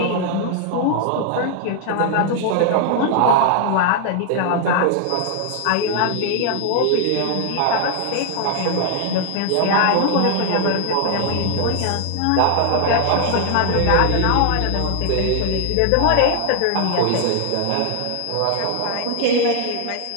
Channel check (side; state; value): both; different; correlation 0.00